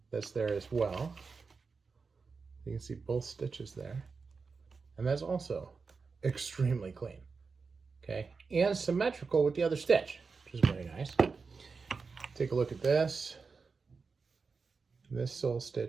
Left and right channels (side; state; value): left; quieter; 4.8 dB